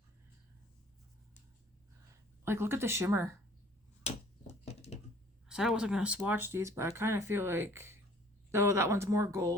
Like, look at the shimmer. I said I wasn't going to swatch these, but I kind of feel like, though that one's more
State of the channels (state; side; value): normal; both; correlation 0.53